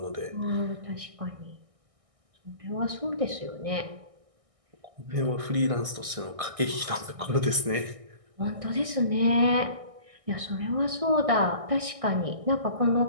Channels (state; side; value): late; left; 1.6 ms